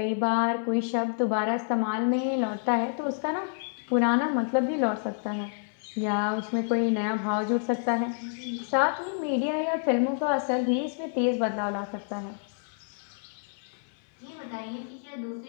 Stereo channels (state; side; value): silent; right; 57 dB below the other